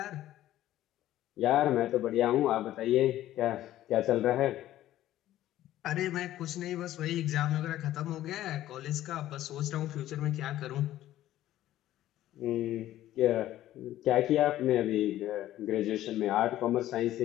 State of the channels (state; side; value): quieter; right; 13.7 dB